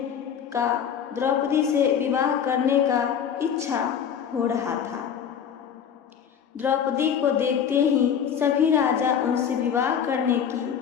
का, द्रौपदी से विवाह करने का इच्छा हो रहा था। द्रौपदी को देखते ही सभी राजा उनसे विवाह करने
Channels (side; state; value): right; quieter; 8.1 dB